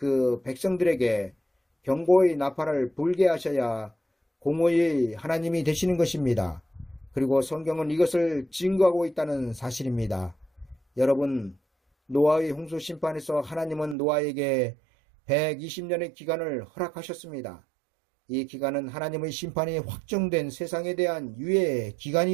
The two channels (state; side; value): drops out; left; at 14.0 s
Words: 백성들에게 경고의 나팔을 불게 하셔야 공의의 하나님이 되시는 것입니다. 그리고 성경은 이것을 증거하고 있다는 사실입니다. 여러분, 노아의 홍수 심판에서 하나님은 노아에게 120년의 기간을 허락하셨습니다. 이 기간은 하나님의 심판이 확정된 세상에 대한 유예